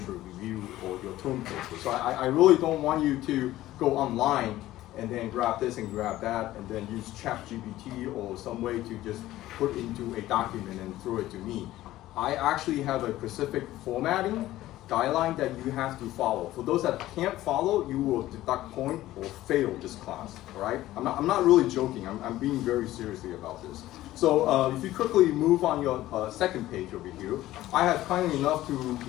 review or your term paper. So I really don't want you to go online and then grab this and grab that and then use ChatGPT or some way to just put into a document and throw it to me. I actually have a specific formatting guideline that you have to follow. For those that can't follow, you will deduct point or fail this class, all right? I'm not really joking, I'm being very seriously about this. So if you quickly move on your second page over here, I have kindly enough to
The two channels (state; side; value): quieter; right; 15.3 dB